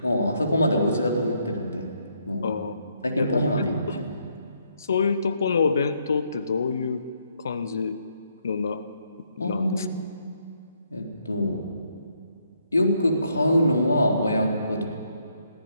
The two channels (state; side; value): inverted; both; correlation -0.73